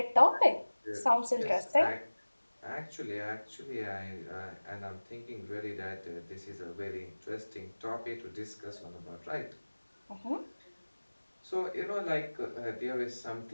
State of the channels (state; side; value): inverted; both; correlation -1.00